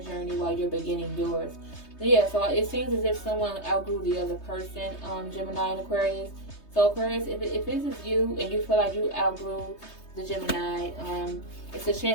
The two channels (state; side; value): late; right; 3.2 ms